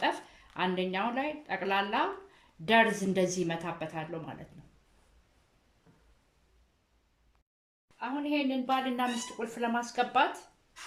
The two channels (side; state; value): both; identical; correlation 1.00